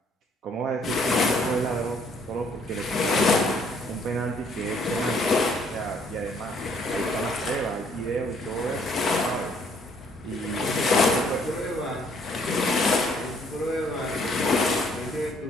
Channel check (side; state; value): both; normal; correlation 0.64